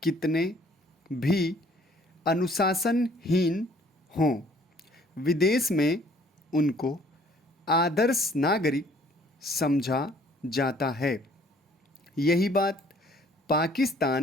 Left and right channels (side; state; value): both; normal; correlation 0.58